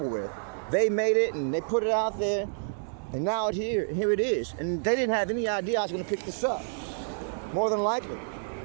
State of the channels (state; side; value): silent; left; 59 dB below the other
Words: with. They made it and they put it out there, and now here it is. And they didn't have any idea I was going to pick this up. More than likely.